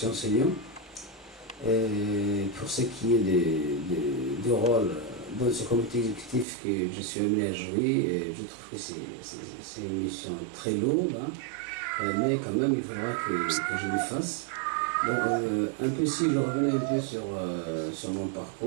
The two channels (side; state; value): left; drops out; at 6.5 s